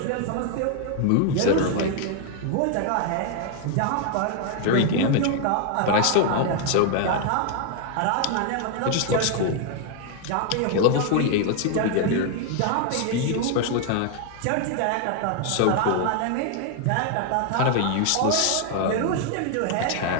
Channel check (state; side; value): different; both; correlation 0.00